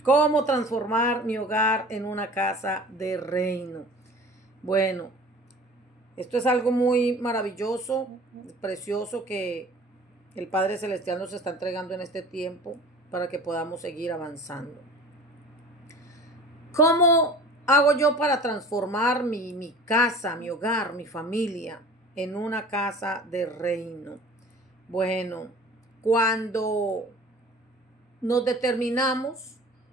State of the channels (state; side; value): normal; both; correlation 0.43